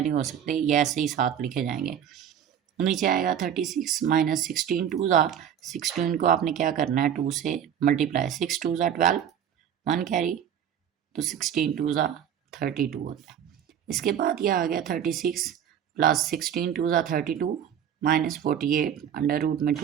नहीं हो सकते, ये ऐसे ही साथ लिखे जाएंगे। नीचे आएगा 36 - 16 × 2 = 16 को आपने क्या करना है, 2 से मल्टीप्लाई, 6 × 2 = 12, 1 कैरी, तो 16 × 2 = 32 होता है। इसके बाद ये आ गया 36 प्लस 16 × 2 = 32 माइनस 48, √2 में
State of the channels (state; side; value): quieter; left; 9.1 dB